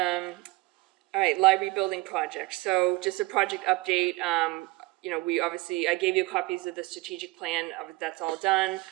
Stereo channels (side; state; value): left; quieter; 22.4 dB